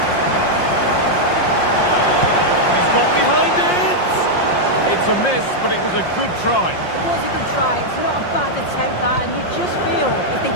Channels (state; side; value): late; right; 5.6 ms